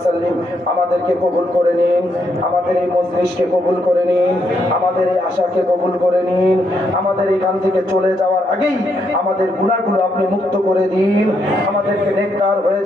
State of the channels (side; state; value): both; normal; correlation 0.77